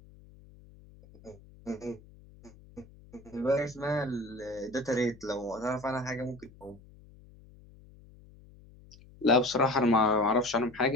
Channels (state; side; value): noise; left; hum, 23 dB below the sound